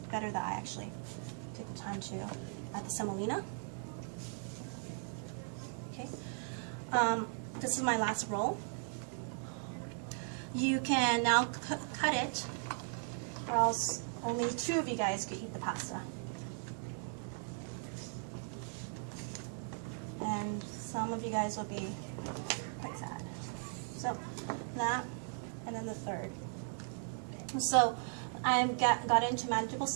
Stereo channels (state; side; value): silent; left; 53 dB below the other